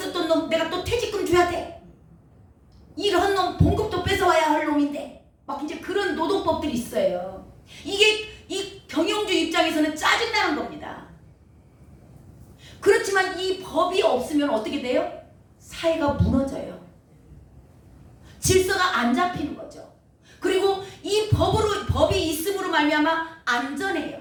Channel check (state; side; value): identical; both; correlation 1.00